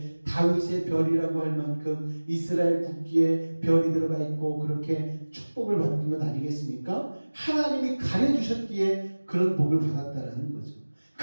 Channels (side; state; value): both; inverted; correlation -1.00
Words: 다윗의 별이라고 할 만큼 이스라엘 국기에 별이 들어가 있고 그렇게 축복을 받는 것 아니겠습니까? 하나님이 가려주셨기에 그런 복을 받았다라는 거죠.